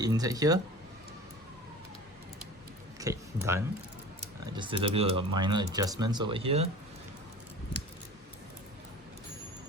inside here. Okay, done. Just a little bit of minor adjustments over here.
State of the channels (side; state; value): both; normal; correlation 0.39